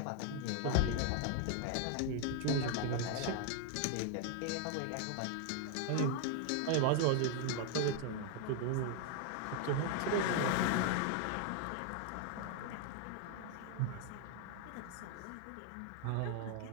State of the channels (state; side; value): different; both; correlation 0.00